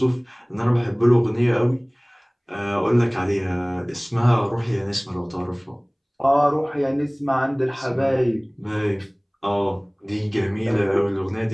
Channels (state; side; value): identical; both; correlation 1.00